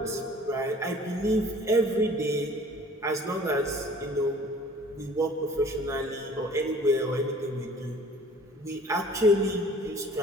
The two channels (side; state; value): both; normal; correlation 0.50